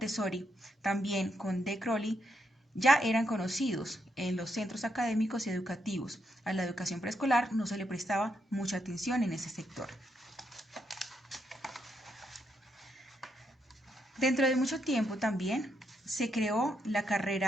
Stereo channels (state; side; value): normal; both; correlation 0.79